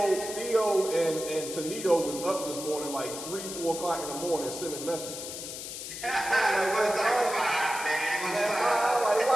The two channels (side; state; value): left; noise; hiss, 8 dB below the sound